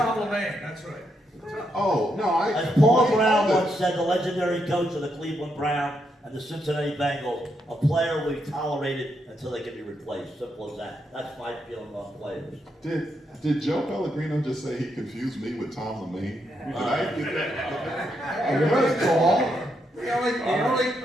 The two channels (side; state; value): both; normal; correlation 0.80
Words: Lemaine. That's right. Oh, no, As Paul Brown once said, the legendary coach of the Cleveland Browns and the Cincinnati Bengals, a player we tolerated until they can be replaced. Simple as that. That's my feeling on players. Did Joe Pellegrino just say he confused me with Tom Lemaine? Did I get that? You're right, Paul. The